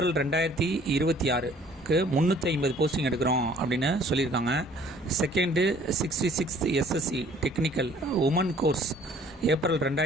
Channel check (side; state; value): both; normal; correlation 0.56